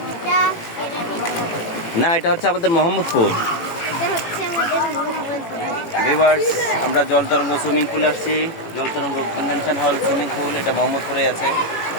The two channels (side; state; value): right; late; 18 ms